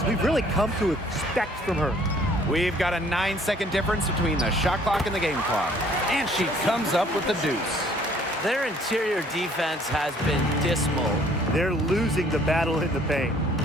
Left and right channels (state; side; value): normal; both; correlation 0.59